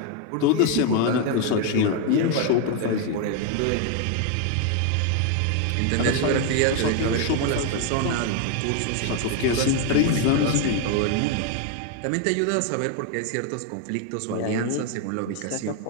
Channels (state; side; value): different; both; correlation 0.01